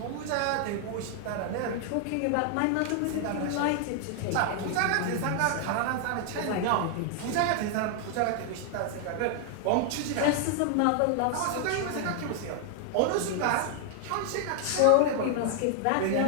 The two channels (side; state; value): both; different; correlation 0.00